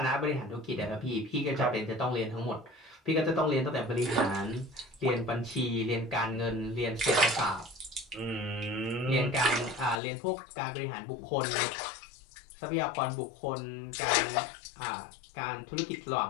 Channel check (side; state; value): right; drops out; at 10.0 s